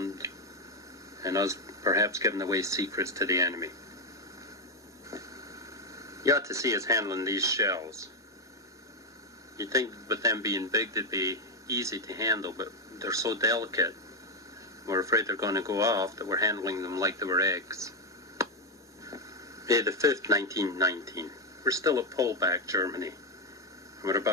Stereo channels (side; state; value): both; normal; correlation 0.05